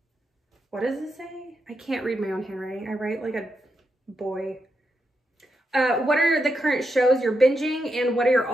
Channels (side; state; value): both; normal; correlation 0.84